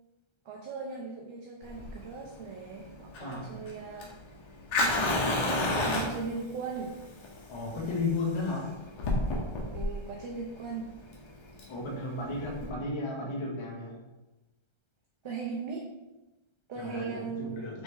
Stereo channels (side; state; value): right; late; 1.3 ms